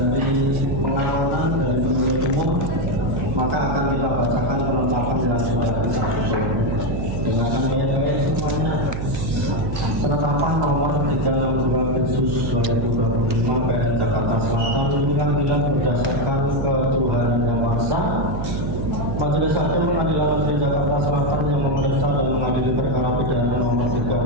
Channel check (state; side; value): noise; right; hum, 4 dB below the sound